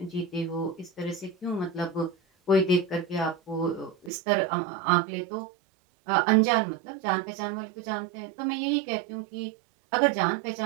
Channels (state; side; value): drops out; left; at 4.1 s